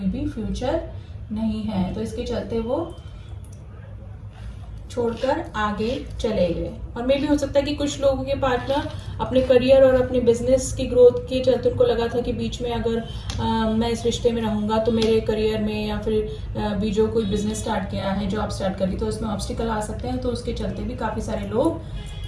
भी फ्यूचर नहीं है। तो इसके चलते वो छोड़कर आगे चले गए। और मे भी हो सकता है कि कुछ लोगों के पार्टनर अपने करियर और अपने बिजनेस की ग्रोथ के चलते उनको लगा था कि बीच में अगर मैं इस रिश्ते में रहूंगा तो मेरे करियर में या फिर भी जो कोई बिजनेस स्टार्ट किया है, जॉब स्टार्ट करी, तो उसमें ऑब्स्टिकल आ सकते हैं। तो उसके चलते भी काफ़ी सारे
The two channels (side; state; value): both; identical; correlation 1.00